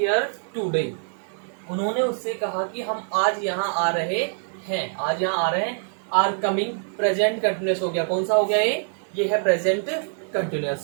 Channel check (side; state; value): left; silent; digital silence